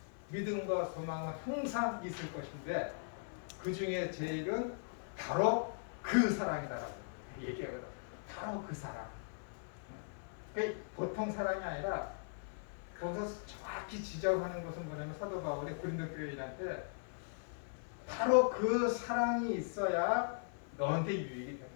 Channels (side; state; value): right; silent; 52 dB below the other